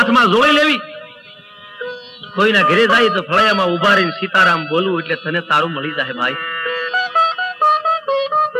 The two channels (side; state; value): both; identical; correlation 1.00